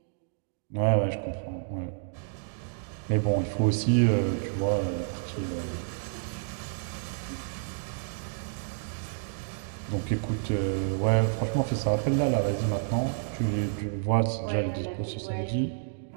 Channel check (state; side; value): silent; left; digital silence